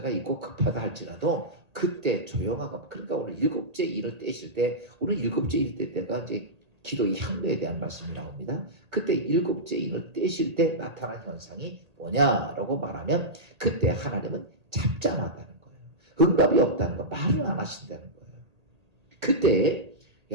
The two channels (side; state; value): left; late; 1.8 ms